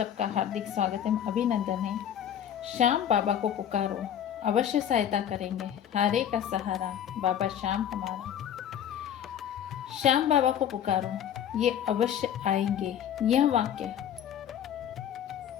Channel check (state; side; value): quieter; right; 9.7 dB